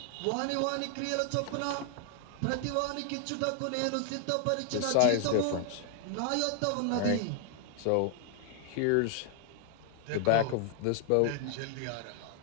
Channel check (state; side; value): different; both; correlation 0.00